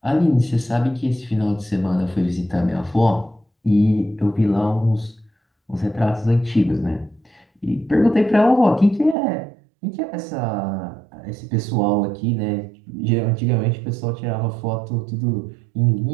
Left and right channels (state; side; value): drops out; left; at 9.2 s